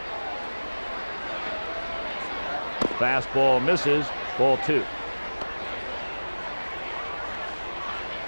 Fastball misses, ball 2.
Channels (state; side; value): inverted; both; correlation -1.00